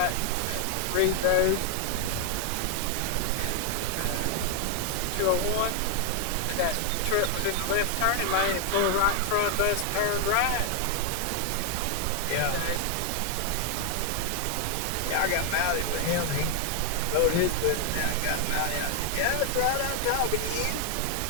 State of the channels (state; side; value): different; both; correlation 0.00